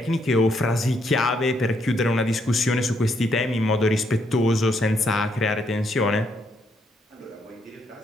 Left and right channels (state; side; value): normal; both; correlation 0.74